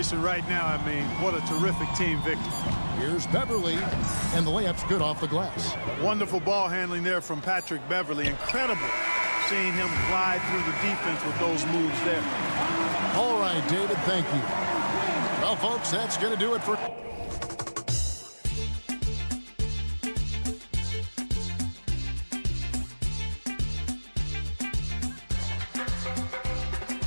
right now. I mean, what a terrific team victory. Here's Beverly, and the layup's good off the glass. Wonderful ball handling there from Patrick Beverly. Incredible seeing him glide through the defense with those moves there. All right, David, thank you. Well, folks, that's going to do it for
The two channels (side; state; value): both; inverted; correlation -1.00